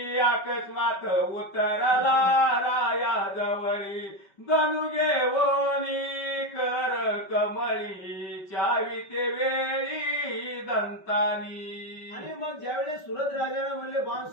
अकस्मात उतरला राया जवळी धनु घेवोनी कर कमळी चावी ते वेळी दंतानी. आणि मग ज्यावेळेस सुरत राजाने म्हणले बाण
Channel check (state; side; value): late; right; 5.2 ms